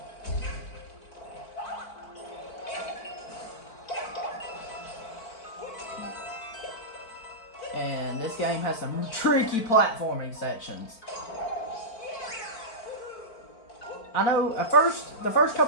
And this game has some tricky platforming sections. I know at first, the first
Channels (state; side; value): late; right; 4.5 ms